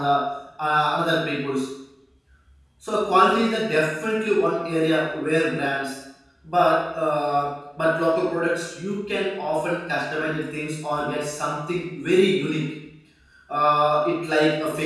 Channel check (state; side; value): identical; both; correlation 1.00